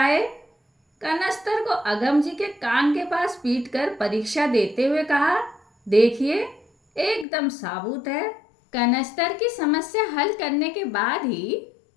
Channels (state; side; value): drops out; right; at 7.2 s